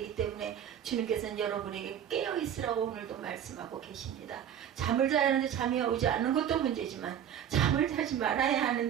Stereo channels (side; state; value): left; quieter; 9.4 dB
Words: 때문에 주님께서는 여러분에게 깨어있으라고 오늘도 말씀하고 계십니다. 잠을 자야 하는데 잠이 오지 않는 것도 문제지만 잠을 자지 말아야